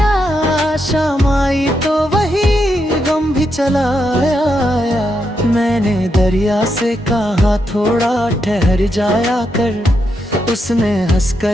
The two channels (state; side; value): normal; both; correlation 0.82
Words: शाम आई तो वही गम भी चला आया। मैंने दरिया से कहा थोड़ा ठहर जाया कर, उसने